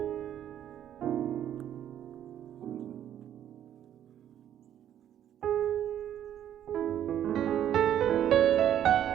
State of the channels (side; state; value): left; quieter; 10.6 dB